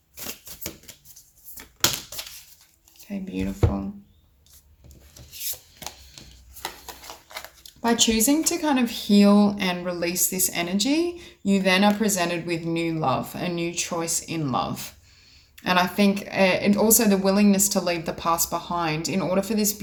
Okay, beautiful. By choosing to kind of heal and release this energy, you then are presented with new love, a new choice in love. And I think, and also the willingness to leave the past behind. In order for this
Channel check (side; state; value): both; identical; correlation 1.00